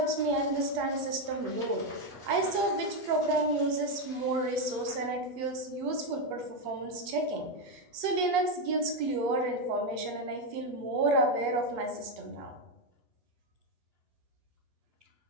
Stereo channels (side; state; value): left; late; 8.4 ms